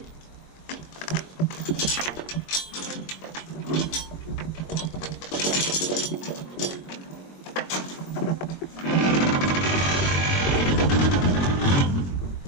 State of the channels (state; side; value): late; right; 22 ms